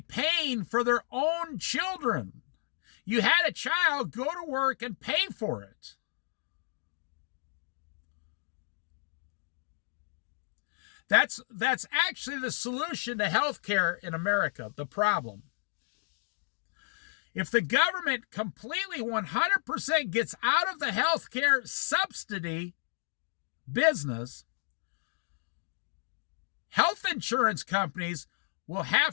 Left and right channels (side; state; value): right; silent; digital silence